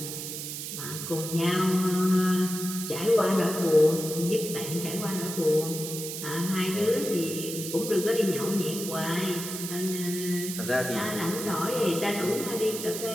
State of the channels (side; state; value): right; noise; hiss, 6 dB below the sound